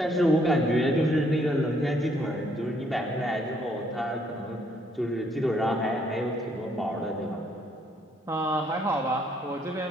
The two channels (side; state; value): both; normal; correlation 0.68